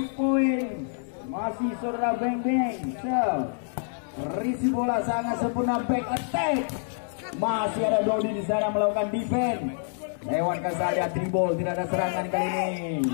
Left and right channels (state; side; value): silent; right; 58 dB below the other